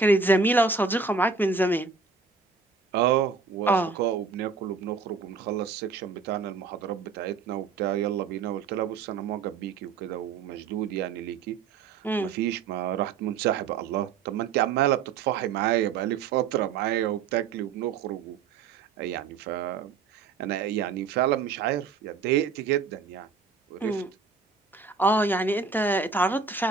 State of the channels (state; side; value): quieter; left; 5.2 dB